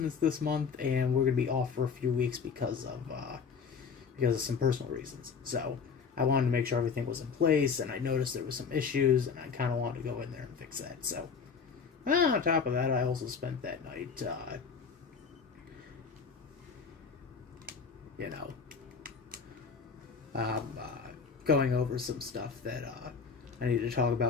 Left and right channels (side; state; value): right; quieter; 5.8 dB